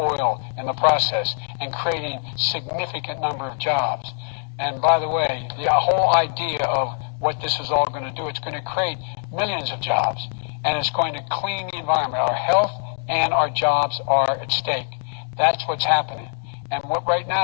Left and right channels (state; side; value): silent; right; digital silence